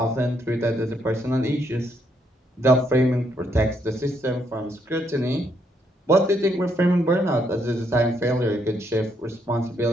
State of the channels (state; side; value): normal; both; correlation 0.74